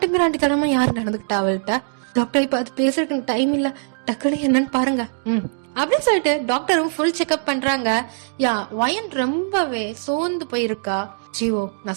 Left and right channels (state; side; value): silent; left; digital silence